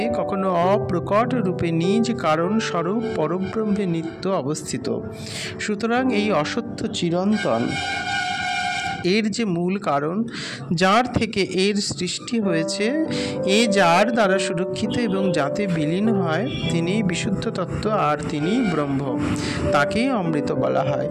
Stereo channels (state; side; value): identical; both; correlation 1.00